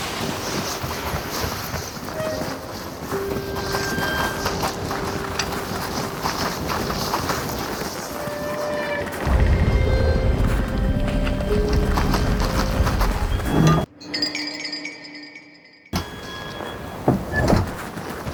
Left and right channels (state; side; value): identical; both; correlation 1.00